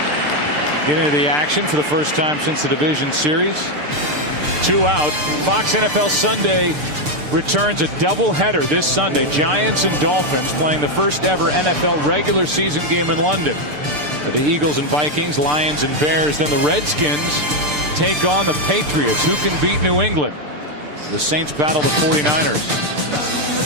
the action for the first time since the division series. 2 out. Fox NFL Sunday returns a doubleheader this Sunday. Giants and Dolphins playing the first ever NFL regular season game in London. The Eagles and Vikings, Lions and Bears. Then the Redskins take on the Patriots. Who can beat New England? The Saints battle the 49ers.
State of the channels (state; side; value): late; left; 6.7 ms